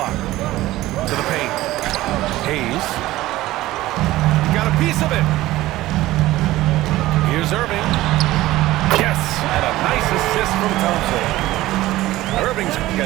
To the paint. Hayes. Got a piece of it. Here's Irving. Yes, and a nice assist from Thompson. Irving's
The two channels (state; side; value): quieter; left; 16.7 dB